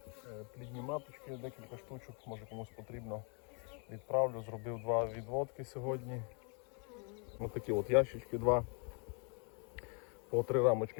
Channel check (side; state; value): right; quieter; 37.4 dB